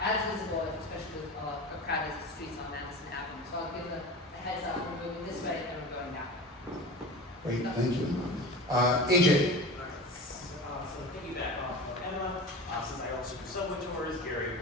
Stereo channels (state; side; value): normal; both; correlation 0.32